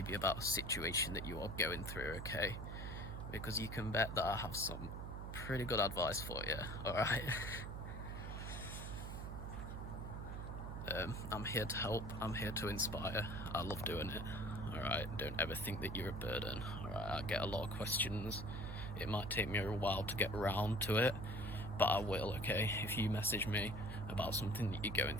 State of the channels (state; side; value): noise; right; hum, 6 dB below the sound